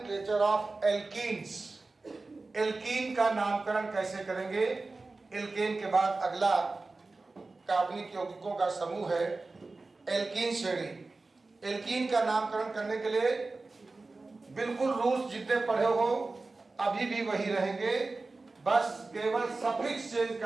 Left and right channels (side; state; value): left; quieter; 3.5 dB